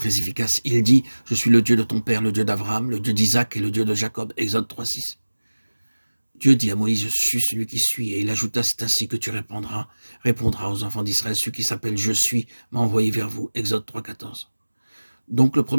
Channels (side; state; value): both; inverted; correlation -1.00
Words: efficace. Il dit, je suis le Dieu de ton père, le Dieu d'Abraham, le Dieu d'Isaac et le Dieu de Jacob. Exode 3,6. Dieu dit à Moïse, je suis celui qui suis. Et il ajouta, c'est ainsi que tu répondras aux enfants d'Israël, celui qui s'appelle je suis m'a envoyé vers vous. Exode 3,14. Donc le